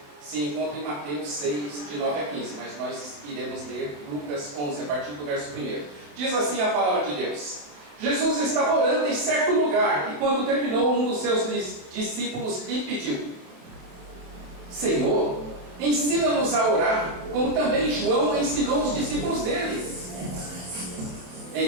se encontra em Mateus 6, de 9 a 15, mas nós iremos ler Lucas 11, a partir do verso 1. Diz assim a palavra de Deus: Jesus estava orando em certo lugar, e quando terminou, um dos seus discípulos lhe pediu: Senhor, ensina-nos a orar, como também João ensinou os discípulos dele.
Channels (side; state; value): left; late; 27 ms